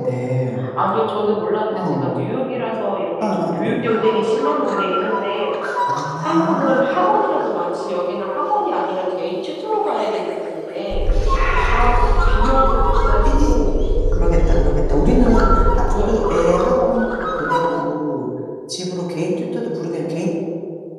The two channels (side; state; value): both; identical; correlation 1.00